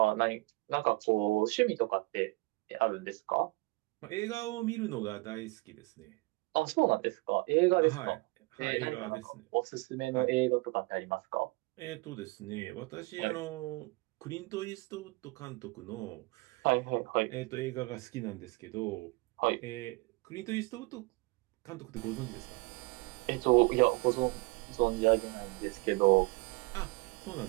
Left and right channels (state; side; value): quieter; left; 25.2 dB